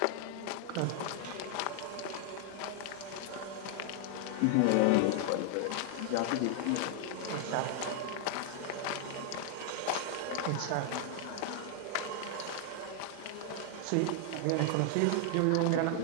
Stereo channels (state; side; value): different; both; correlation 0.00